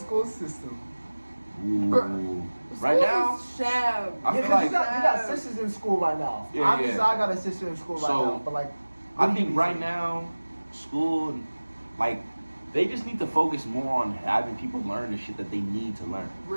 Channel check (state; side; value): inverted; both; correlation -1.00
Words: system? Ooh. Right now, Sham. I Yeah, feel 'cause like you got sisters in school right now. Yeah, Obviously, yeah. I got a sister in school right So, now, but like, I what do think you right think? now, school, like, they just need to focus more on having people learn the shit that they need to learn.